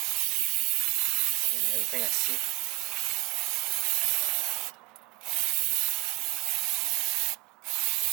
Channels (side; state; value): left; quieter; 25.7 dB